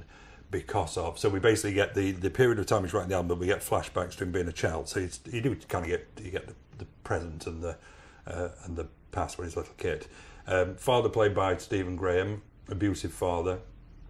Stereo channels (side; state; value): both; identical; correlation 1.00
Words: because of. So we basically get the period of time he's writing the album, but we get flashbacks to him being a child. So you do kind of get the present and the past when he's a little kid. Father played by Stephen Graham, abusive father.